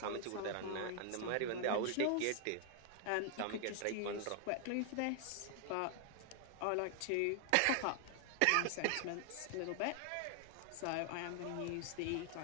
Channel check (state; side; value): different; both; correlation 0.00